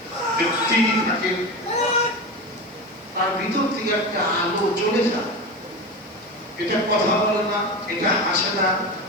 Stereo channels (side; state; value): right; noise; hiss, 29 dB below the sound